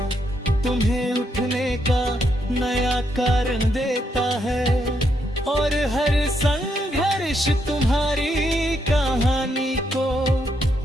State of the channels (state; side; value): normal; both; correlation 0.78